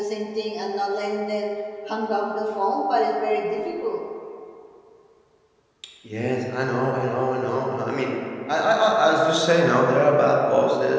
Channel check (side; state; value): both; identical; correlation 1.00